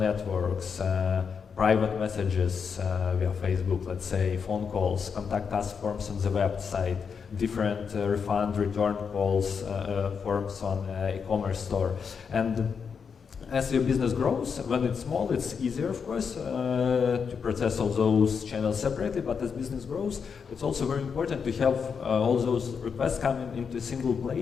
private messages via Facebook, let's say, phone calls, contact us forms on the website, different refund return calls, forms on e-commerce store. And as your business grows, when it's small, it's easier, of course, to process all those channels separately, but as business grows, it's also very important to have all those requests coming into a single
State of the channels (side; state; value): right; quieter; 6.2 dB